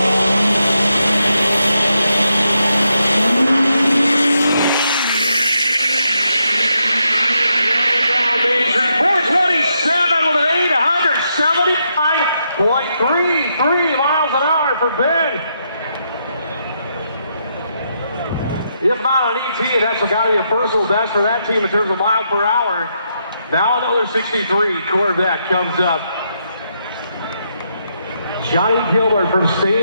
.33 miles an hour for Ben. If not on ET, that's got to be a personal best for that team in terms of mile per hour. Now another 63 Corvette comes up. Johnny Gilbert from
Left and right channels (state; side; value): inverted; both; correlation -0.80